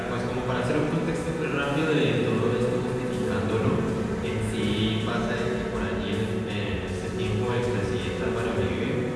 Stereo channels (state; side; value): identical; both; correlation 1.00